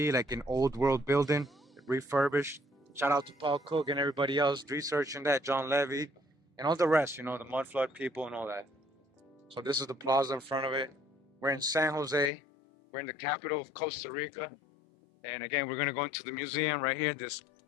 like an old world building, refurbished. Shout out to Paul Cook and everybody else researching that, John Levy, and all the rest, the mud flood people and all that. So this is the plaza in front of it. We're in San Jose. We're in the capital of Costa Rica. And again, we're gonna go into the museum right here. This,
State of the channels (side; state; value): right; drops out; at 12.3 s